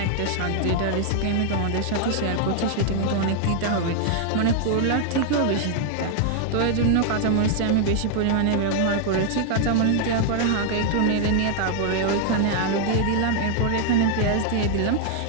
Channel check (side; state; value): both; different; correlation 0.00